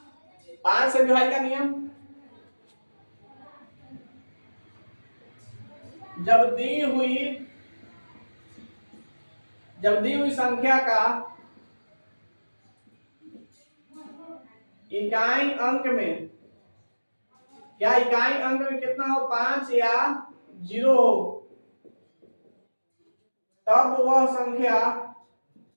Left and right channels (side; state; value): both; inverted; correlation -1.00